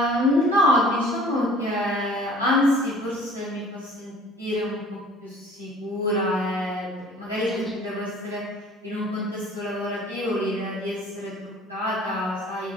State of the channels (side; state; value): both; normal; correlation 0.50